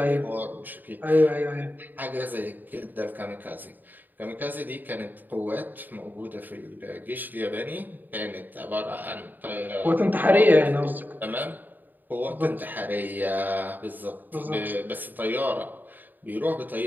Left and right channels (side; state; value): left; late; 0.088 ms